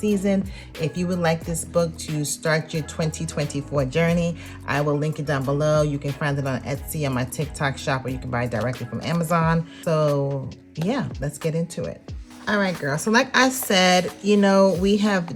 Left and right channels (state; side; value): identical; both; correlation 1.00